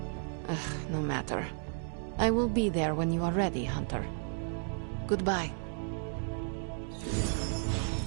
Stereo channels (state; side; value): silent; left; 56 dB below the other